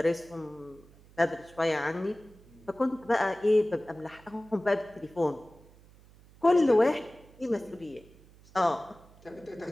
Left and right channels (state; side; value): noise; right; hum, 25 dB below the sound